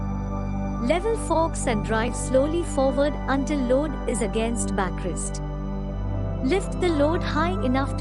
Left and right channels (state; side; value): identical; both; correlation 1.00